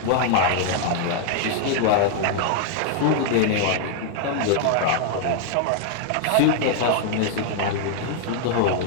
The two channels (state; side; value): different; both; correlation 0.00